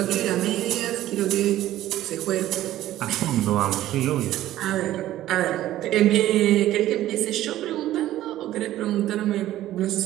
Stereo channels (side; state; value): left; quieter; 14.0 dB